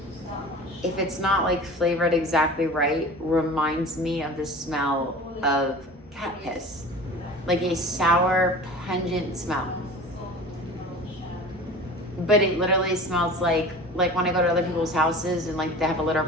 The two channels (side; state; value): both; normal; correlation 0.38